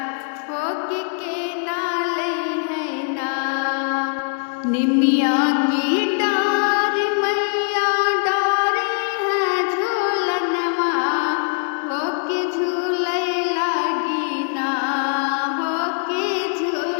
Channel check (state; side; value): silent; right; 61 dB below the other